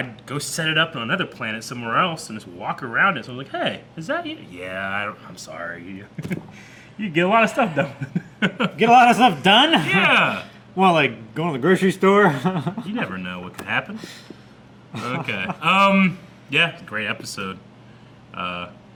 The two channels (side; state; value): both; identical; correlation 1.00